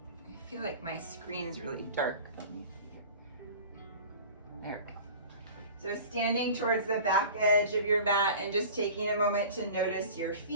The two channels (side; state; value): both; inverted; correlation -0.40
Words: I feel like my screen's really dark. There we go. So standing towards the back edge of your mat and just taking a moment to notice your